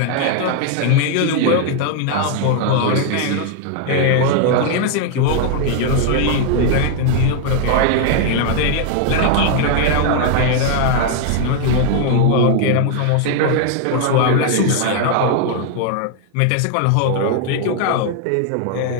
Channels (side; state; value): both; different; correlation 0.00